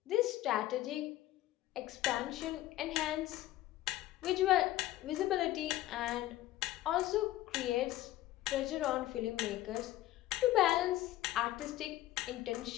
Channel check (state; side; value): quieter; right; 15.3 dB